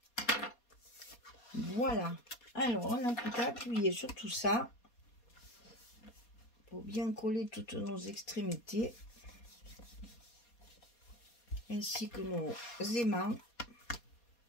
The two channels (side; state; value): right; late; 4.2 ms